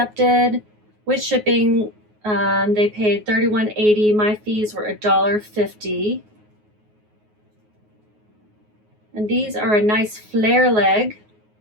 With shipping, they paid $31.80. My fees were $1.50. And these are a nice flare leg.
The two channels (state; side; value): late; left; 9.5 ms